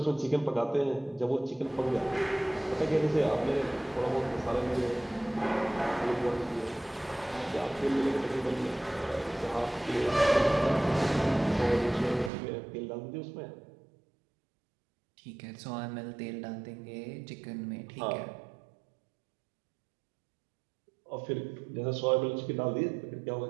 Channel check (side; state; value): left; drops out; at 12.3 s